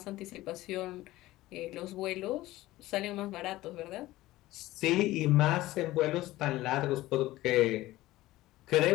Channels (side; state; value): right; quieter; 17.0 dB